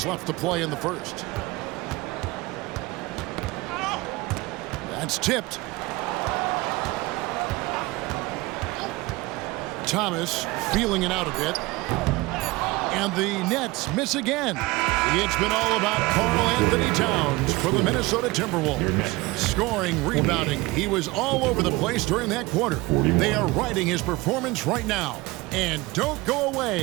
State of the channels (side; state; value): left; quieter; 21.7 dB